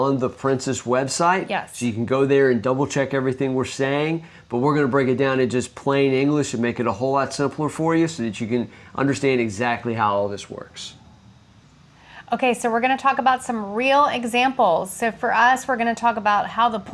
the Princess website. Yes. So you can go there and double check everything we're saying, but we're going to break it down in just plain English and make it a whole lot simpler for you so that you can understand exactly how all this works. Okay, so we're going to talk about some real examples. So for us, we're going to talk about how the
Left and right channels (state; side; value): identical; both; correlation 1.00